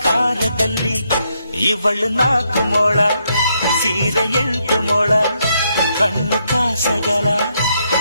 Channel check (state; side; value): inverted; both; correlation -0.77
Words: ಇವಳು 4 ಮೊಳ ಸೀರೆ 8 ಮೊಳ, ಕಣ್ಣು ಕಾಸಗಲ